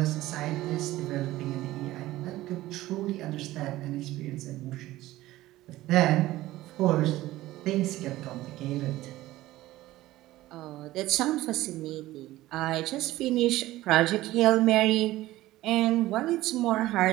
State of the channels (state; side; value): quieter; left; 16.5 dB